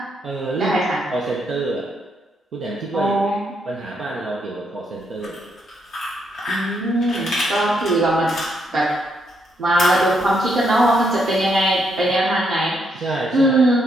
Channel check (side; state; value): both; normal; correlation 0.76